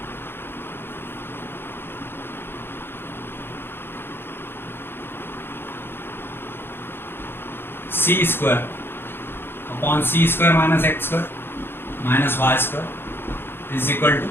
C square upon c square minus x square minus y square is equal to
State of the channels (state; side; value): late; right; 0.11 ms